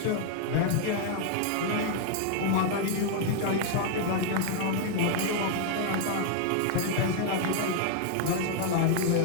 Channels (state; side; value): different; both; correlation 0.00